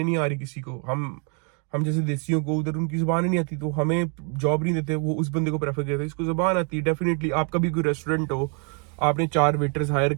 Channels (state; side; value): quieter; left; 38.9 dB